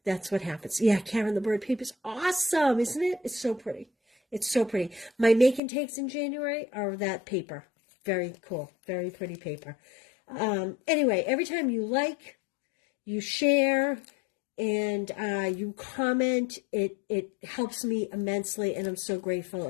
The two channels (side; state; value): right; drops out; at 5.6 s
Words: that's what happens. Yeah, Karen the Bird paper is awesome, isn't it? It's so pretty. It's so pretty. My make and takes in January are that paper. Very cool. Very pretty paper. Anyway, every time you like, you share, and you comment, it helps me immensely, and I'm so grateful,